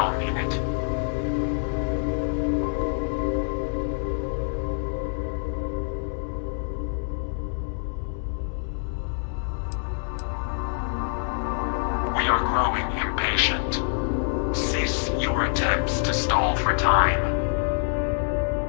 in it. We are growing impatient. Cease your attempts to stall for time.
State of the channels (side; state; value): right; silent; digital silence